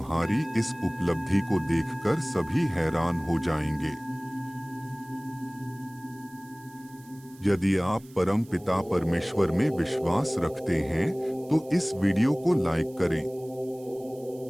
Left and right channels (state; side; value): noise; right; hiss, 25 dB below the sound